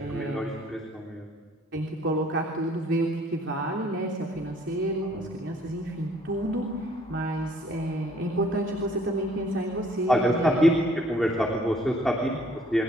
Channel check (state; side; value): normal; both; correlation 0.60